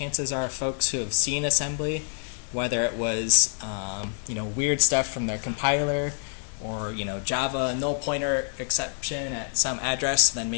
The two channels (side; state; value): right; silent; digital silence